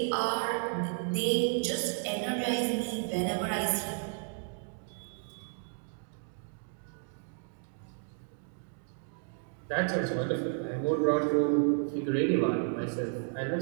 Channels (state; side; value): silent; left; 56 dB below the other